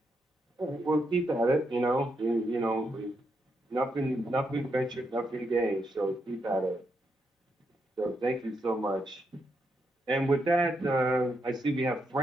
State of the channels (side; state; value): both; normal; correlation 0.81